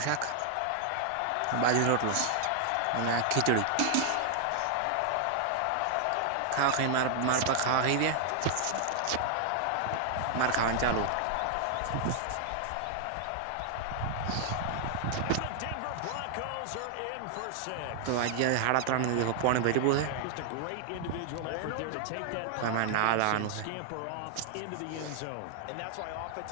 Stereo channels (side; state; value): both; different; correlation 0.00